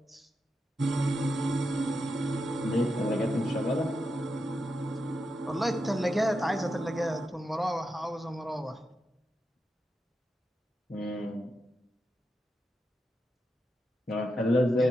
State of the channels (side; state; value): both; normal; correlation 0.87